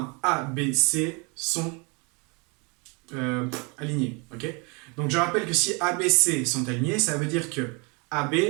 A, B, C sont alignés. Okay, donc je rappelle que si A, B, C sont alignés, ça veut dire que AB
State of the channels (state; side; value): quieter; left; 31.1 dB